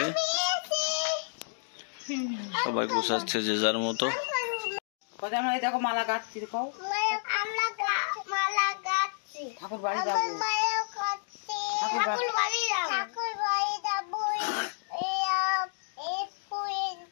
সবাই গুছাচ্ছে যে যার মতো। দেখো মালা গাচ্ছি, ঠাকুর বাড়ি যাবো,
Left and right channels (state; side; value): silent; right; digital silence